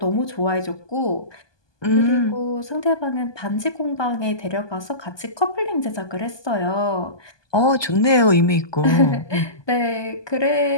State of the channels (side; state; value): right; late; 1.2 ms